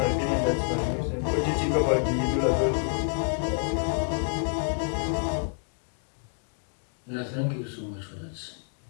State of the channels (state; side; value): silent; right; 59 dB below the other